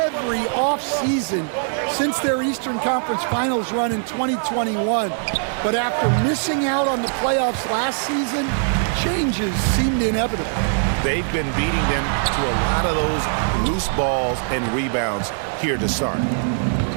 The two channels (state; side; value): silent; left; digital silence